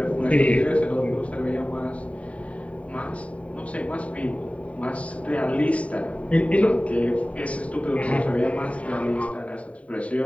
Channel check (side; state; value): right; late; 0.066 ms